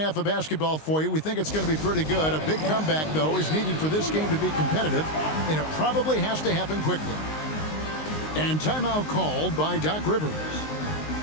of basketball for you. We think it's going to be pretty good. A big comeback, though, is needed for this game to be competitive, and it probably has to happen quickly. And timeout called by Doc Rivers.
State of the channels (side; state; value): right; late; 19 ms